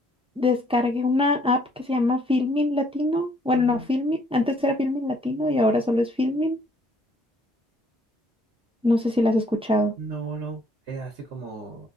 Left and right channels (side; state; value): both; normal; correlation 0.64